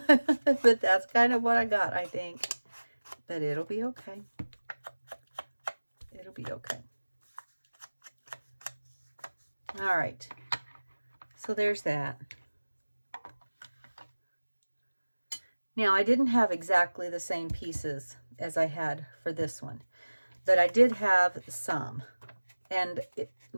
But that's kind of what I got, I think. But it'll be okay. It'll be okay. All right. So there's that. Now, I didn't have exactly the same pieces as I had for this one, but I did have some. And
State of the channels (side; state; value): both; inverted; correlation -1.00